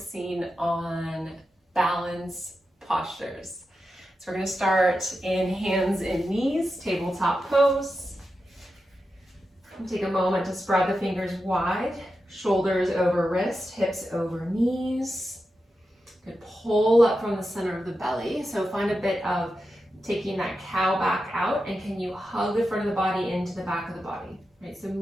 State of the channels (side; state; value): both; normal; correlation 0.90